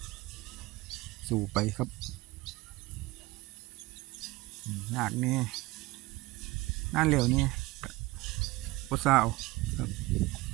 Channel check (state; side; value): quieter; left; 20.8 dB